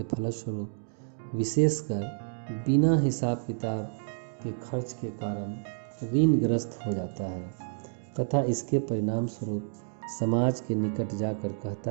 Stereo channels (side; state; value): left; silent; digital silence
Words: फलस्वरूप विशेषकर बिना हिसाब किताब के खर्च के कारण ऋणग्रस्त हो जाता है तथा इसके परिणाम स्वरूप समाज के निकट जाकर